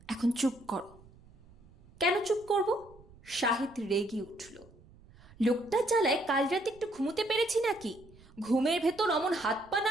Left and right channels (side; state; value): right; noise; rumble, 25 dB below the sound